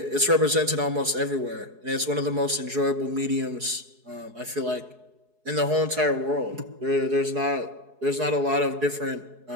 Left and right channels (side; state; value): left; late; 4.7 ms